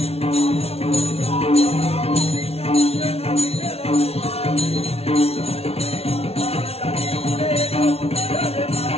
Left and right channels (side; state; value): right; late; 0.30 ms